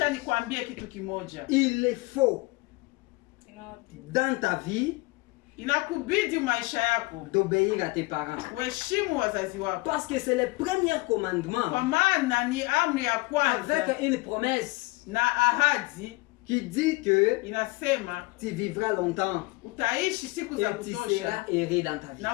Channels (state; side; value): quieter; right; 23.6 dB